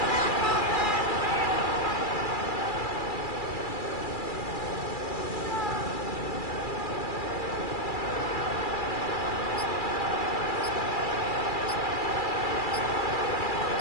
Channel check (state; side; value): late; right; 2.3 ms